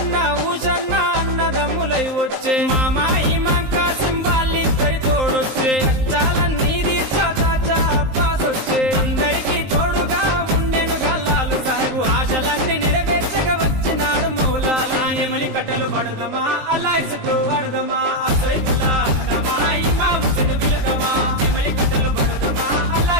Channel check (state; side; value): late; left; 19 ms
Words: ఊషన్న అన్నదమ్ములై వచ్చే మామా ఇమాం కాసిం వాళ్ళిద్దరి తోడొచ్చే కష్టాలన్నీ తీర్చా చాచా అబ్బాస్ వచ్చే అందరికీ తోడుగా ఉండెను గల్లాలు సాహెబు ఆశలన్నీ నెరవేర్చగా వచ్చినాడు మౌలాలి ఎమలి కట్టెలు పడదమా అల్లాయిసకు పడదమా సైతుల్లా అన్నమా ఇమాం హుసేన్ బిలదమా ఎమలి కట్టెలు పడదమా